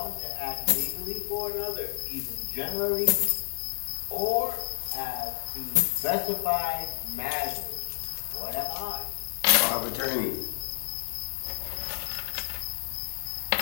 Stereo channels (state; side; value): silent; right; 57 dB below the other